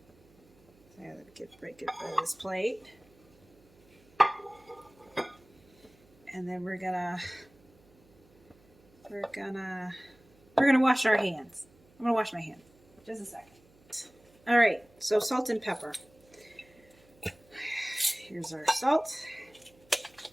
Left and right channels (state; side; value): noise; right; hum, 30 dB below the sound